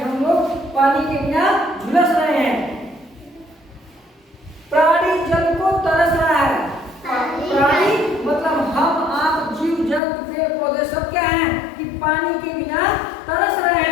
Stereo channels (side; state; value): right; drops out; at 10.0 s